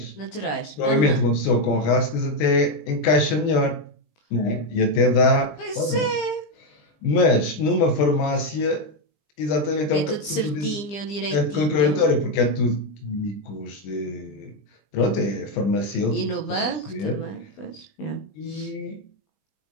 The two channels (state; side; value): late; right; 20 ms